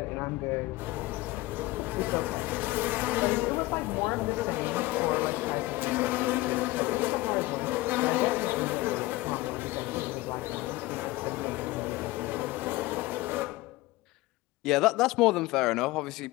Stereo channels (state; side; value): quieter; right; 19.3 dB